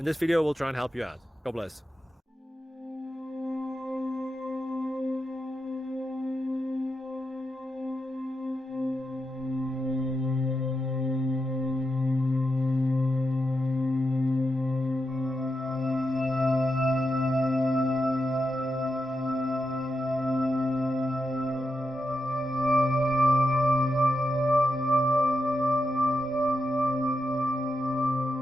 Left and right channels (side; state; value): both; normal; correlation 0.87